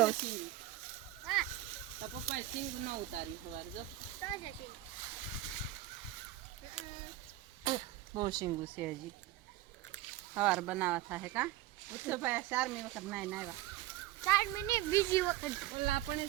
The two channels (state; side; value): quieter; left; 14.9 dB